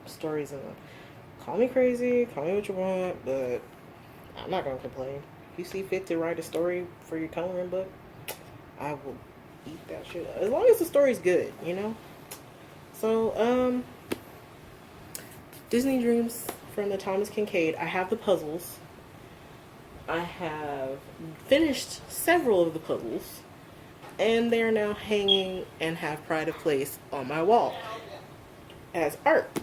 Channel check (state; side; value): identical; both; correlation 1.00